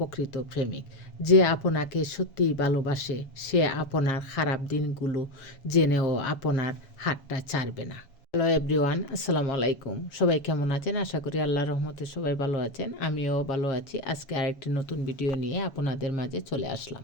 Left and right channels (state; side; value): late; right; 7.1 ms